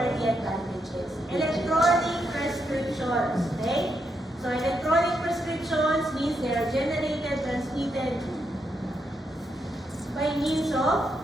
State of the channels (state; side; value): normal; both; correlation 0.81